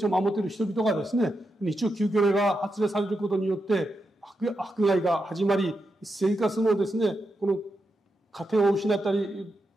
を守っている人々がですね、日曜休業令が発令されることによって迫害が始まり、生活のですね、この家庭を失ったり、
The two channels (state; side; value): normal; both; correlation 0.86